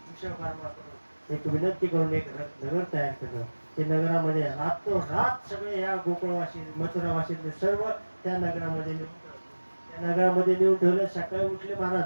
विश्वकर्मा करून एक विनंती करून एक नगर तयार केलं. ते नगरामध्ये रात सगळे या गोकुळवासी मथुरावासींनी सर्व त्या नगरामध्ये नेऊन ठेवले. सकाळी उठले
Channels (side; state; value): both; inverted; correlation -1.00